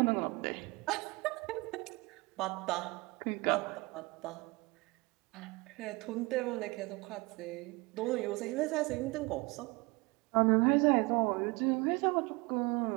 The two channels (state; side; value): quieter; left; 24.8 dB